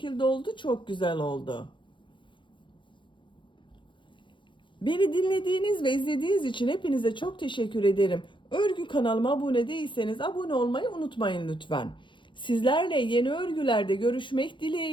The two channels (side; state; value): right; late; 0.23 ms